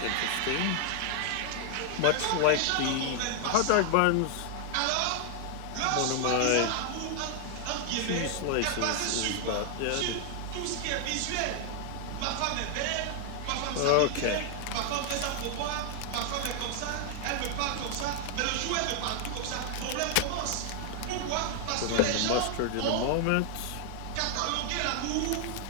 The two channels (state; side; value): different; both; correlation 0.00